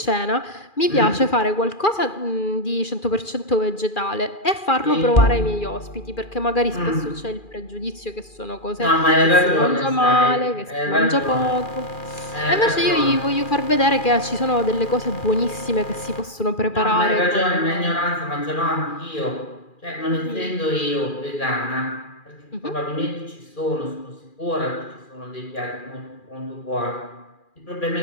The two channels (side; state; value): right; late; 2.4 ms